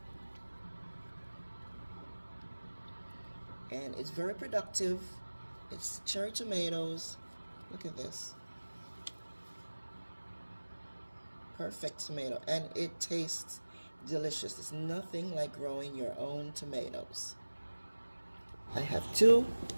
And it's very productive. It's cherry tomatoes. Look at this. Perfect tomato. And it tastes delicious. It's nothing like growing your own tomatoes. I have two.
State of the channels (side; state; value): both; inverted; correlation -1.00